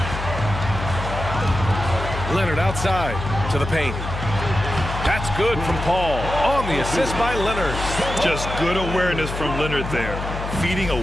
Leonard outside to the paint. That's good from Paul. On the assist by Leonard. Just good awareness from Leonard there. Feeding a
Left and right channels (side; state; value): left; noise; hum, 6 dB below the sound